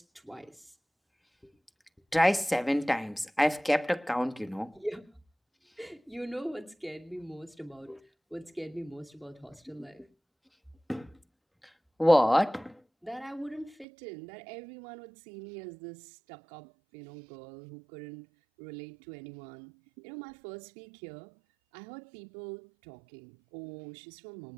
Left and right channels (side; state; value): left; drops out; at 13.9 s